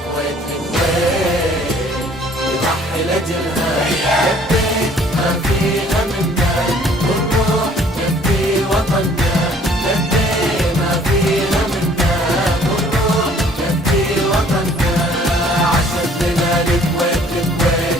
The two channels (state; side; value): normal; both; correlation 0.57